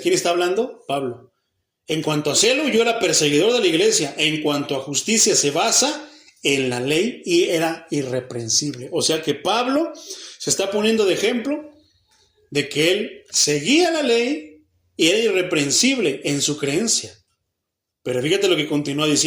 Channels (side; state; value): both; identical; correlation 1.00